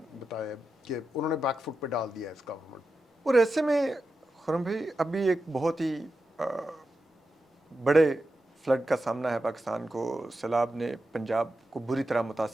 بتایا کہ انہوں نے بیک فٹ پہ ڈال دیا ہے اس گورنمنٹ. اور ایسے میں خرم بھائی ابھی ایک بہت ہی بڑے فلڈ کا سامنا ہے پاکستان کو. سیلاب نے پنجاب کو بری طرح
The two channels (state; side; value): normal; both; correlation 0.90